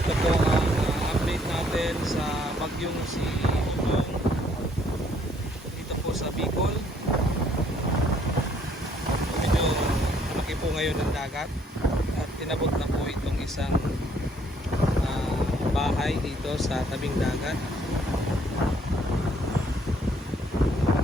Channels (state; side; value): normal; both; correlation 0.65